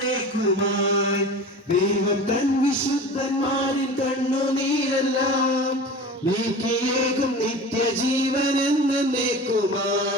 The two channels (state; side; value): normal; both; correlation 0.35